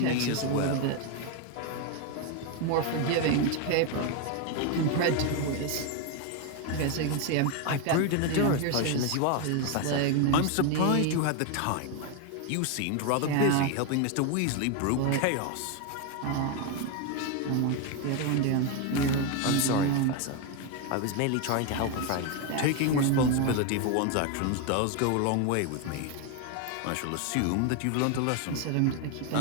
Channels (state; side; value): different; both; correlation 0.02